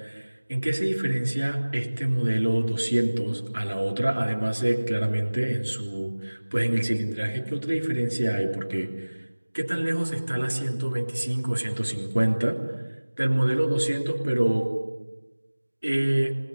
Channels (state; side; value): inverted; both; correlation -1.00